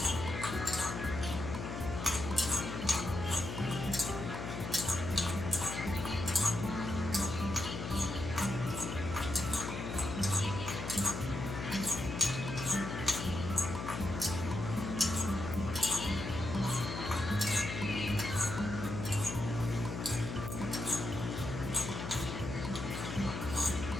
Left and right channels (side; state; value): left; noise; hum, 6 dB below the sound